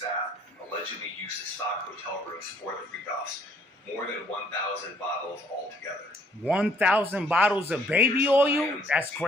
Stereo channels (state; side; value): normal; both; correlation 0.64